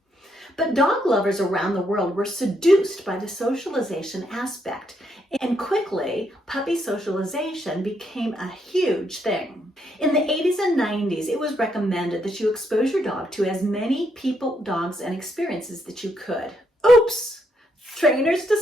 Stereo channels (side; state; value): both; normal; correlation 0.77